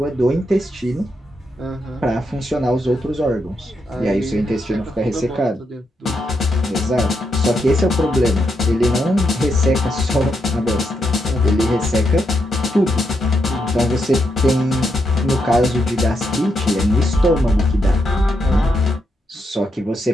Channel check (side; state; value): both; normal; correlation 0.81